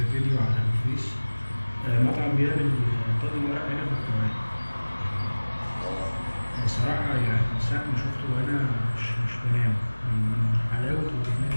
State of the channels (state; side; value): inverted; both; correlation -1.00